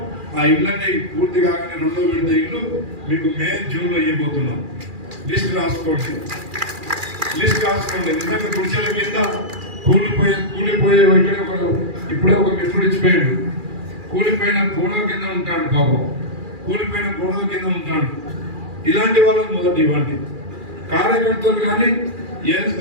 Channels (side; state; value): left; late; 2.4 ms